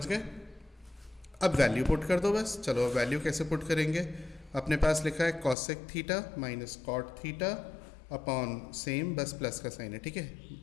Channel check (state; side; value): drops out; right; at 5.6 s